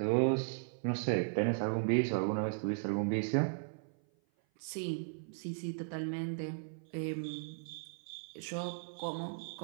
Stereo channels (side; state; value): left; silent; 53 dB below the other